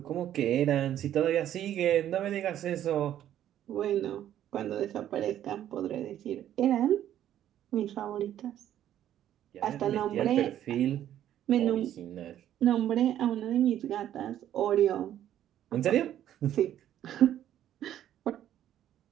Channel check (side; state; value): left; quieter; 11.4 dB